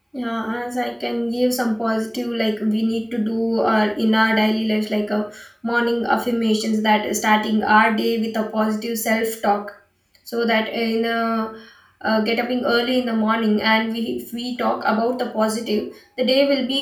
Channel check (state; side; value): identical; both; correlation 1.00